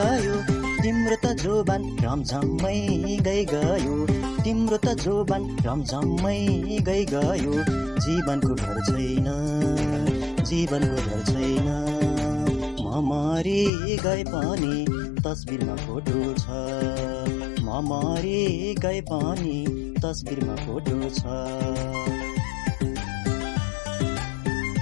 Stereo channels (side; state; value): right; drops out; at 13.7 s